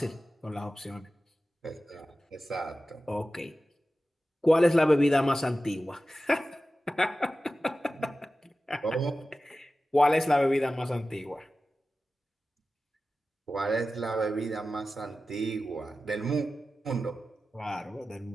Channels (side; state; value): both; normal; correlation 0.94